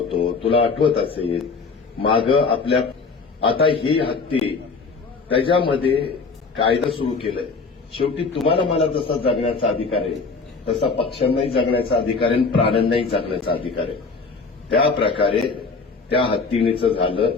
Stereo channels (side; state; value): right; quieter; 4.5 dB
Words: तुला आठवत असेल माग आपल्या आता ही हत्ती त्याच्यामध्ये कायदा सुरू केलाय. शेवटी तुम्हाला मला जसा जगण्याचा अधिकार आहे तसा पक्ष्यांनाही जगण्याचा अधिकार आहे, प्राण्यांनाही जगण्याचा अधिकार आहे. त्या प्रकारे त्या हत्तीणीचं झालं